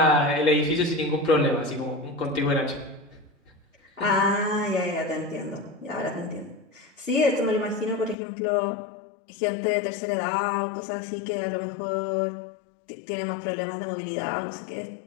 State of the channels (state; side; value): drops out; right; at 8.2 s